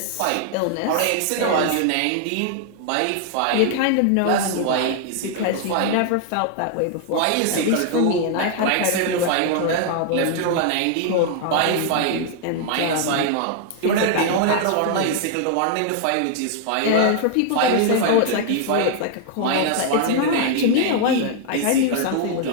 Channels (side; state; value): both; different; correlation 0.00